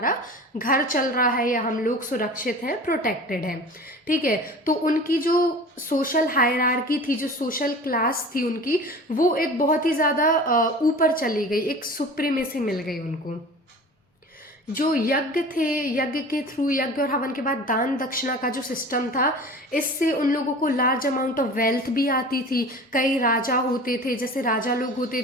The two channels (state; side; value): normal; both; correlation 0.39